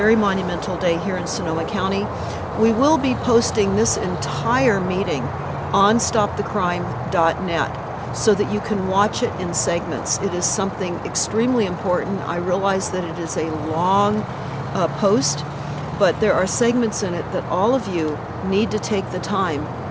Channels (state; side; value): identical; both; correlation 1.00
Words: monumental day here in Sonoma County. We will be posting this entire meeting on stopthecrime.net so that you can watch it in segments. It is something extremely important. I realize that it is a long post, but there are segments in it that all of you need to take the time